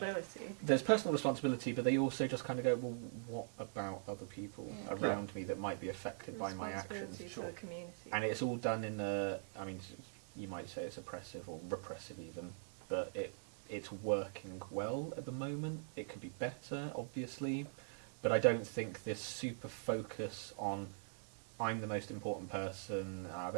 There's personal responsibility, but they also just kind of go, well, what about other people Yeah. around me that might be affected by my actions? Responsibility Sure. to the community. And it's all done in a, I mean, you might say it's oppressive or repressive even, but it's working well at the moment. It could be better, obviously, but I don't think this super focus on I'm the most important person, I've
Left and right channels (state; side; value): silent; left; digital silence